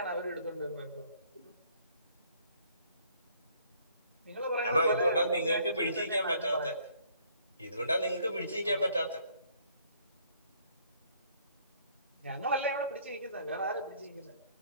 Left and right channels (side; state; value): both; inverted; correlation -0.62